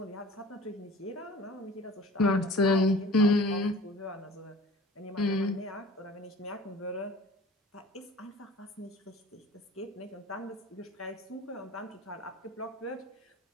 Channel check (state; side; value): normal; both; correlation 0.45